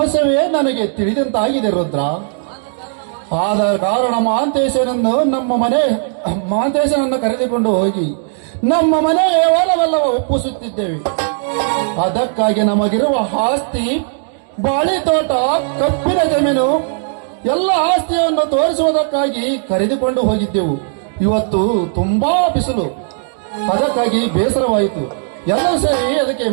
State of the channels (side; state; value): left; silent; 69 dB below the other